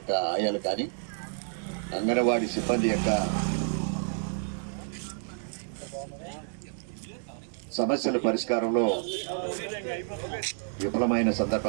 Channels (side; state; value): left; silent; digital silence